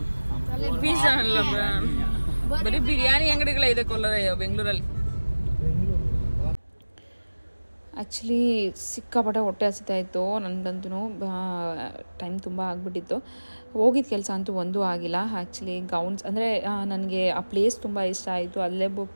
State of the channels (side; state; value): both; inverted; correlation -1.00